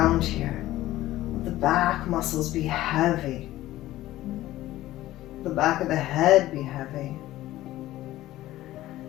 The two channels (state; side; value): quieter; right; 15.5 dB